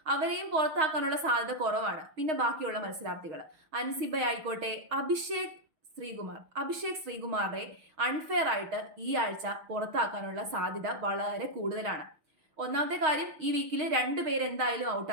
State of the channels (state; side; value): late; left; 6.4 ms